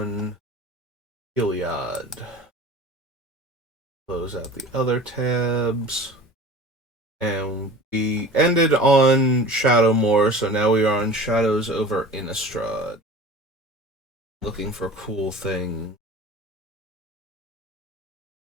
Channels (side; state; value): both; normal; correlation 0.40